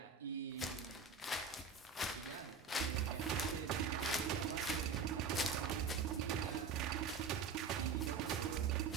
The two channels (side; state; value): left; quieter; 5.3 dB